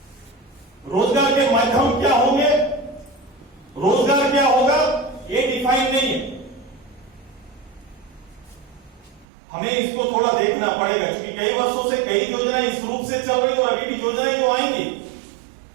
रोजगार के माध्यम क्या होंगे, रोजगार क्या होगा, ये डिफाइन नहीं है। हमें इसको थोड़ा देखना पड़ेगा, क्योंकि कई वर्षों से कई योजनाएं इस रूप से चल रही और अभी भी योजनाएं जो आएंगी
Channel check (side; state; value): left; drops out; at 9.2 s